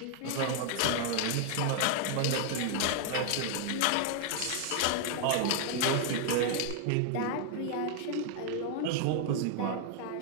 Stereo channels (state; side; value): different; both; correlation 0.00